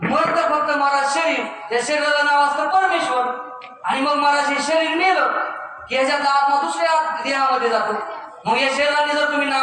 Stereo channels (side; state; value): both; identical; correlation 1.00